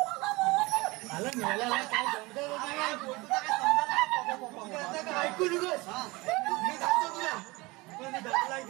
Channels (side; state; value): left; quieter; 23.2 dB